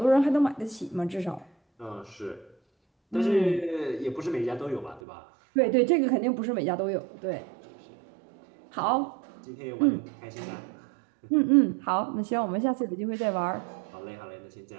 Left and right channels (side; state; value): left; drops out; at 5.0 s